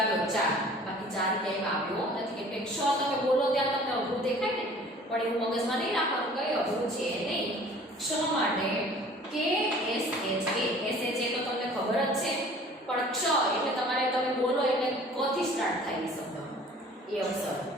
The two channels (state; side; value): normal; both; correlation 0.49